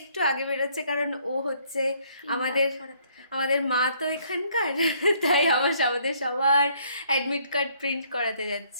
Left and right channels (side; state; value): both; inverted; correlation -0.65